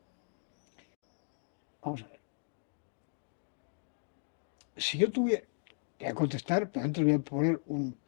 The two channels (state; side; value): silent; right; digital silence